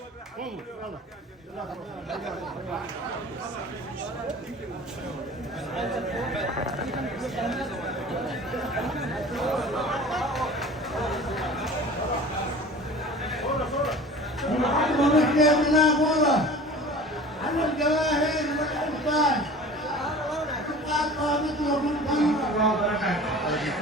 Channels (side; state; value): both; normal; correlation 0.41